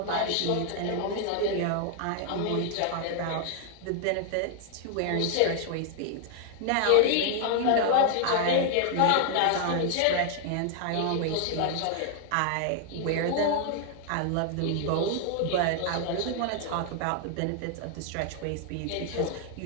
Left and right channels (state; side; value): different; both; correlation 0.00